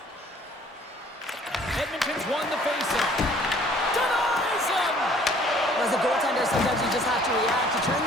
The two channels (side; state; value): both; normal; correlation 0.56